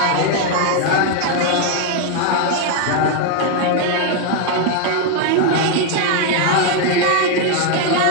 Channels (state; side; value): different; both; correlation 0.00